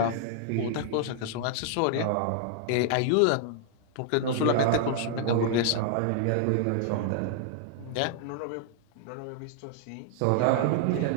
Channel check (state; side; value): different; both; correlation 0.00